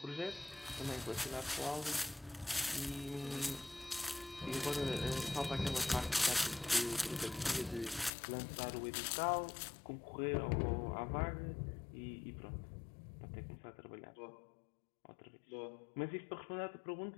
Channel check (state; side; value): drops out; right; at 8.1 s